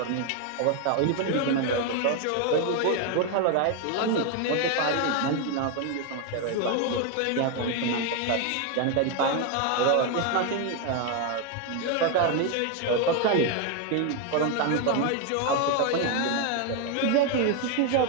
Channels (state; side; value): different; both; correlation 0.01